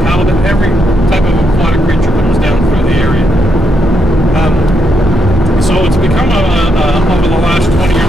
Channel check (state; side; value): normal; both; correlation 0.77